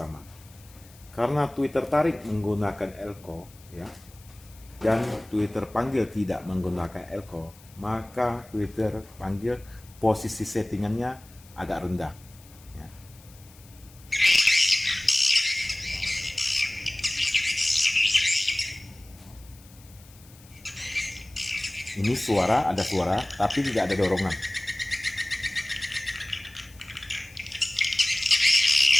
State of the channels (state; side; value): noise; left; hiss, 24 dB below the sound